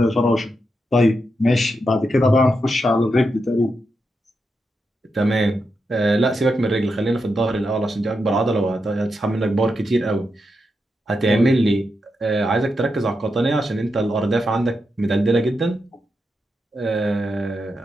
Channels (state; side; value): normal; both; correlation 0.86